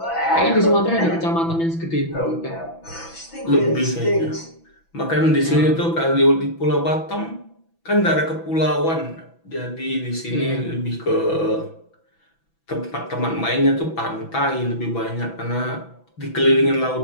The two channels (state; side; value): late; right; 6.0 ms